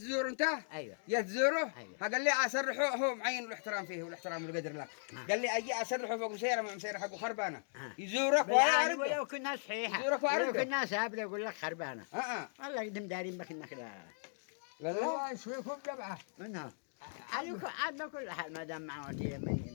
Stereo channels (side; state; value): right; silent; digital silence